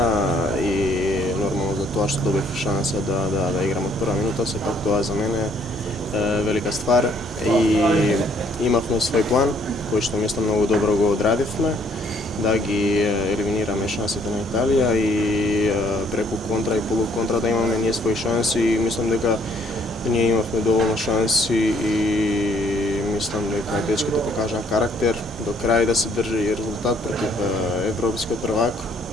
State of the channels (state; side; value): normal; both; correlation 0.65